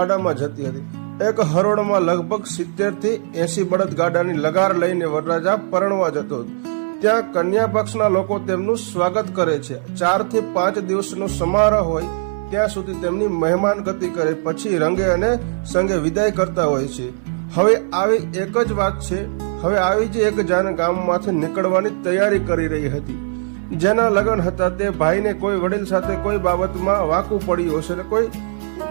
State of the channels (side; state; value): left; silent; 64 dB below the other